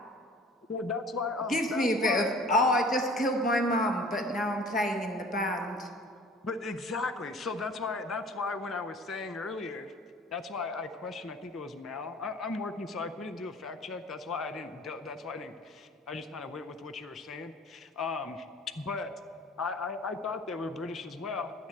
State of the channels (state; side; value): normal; both; correlation 0.47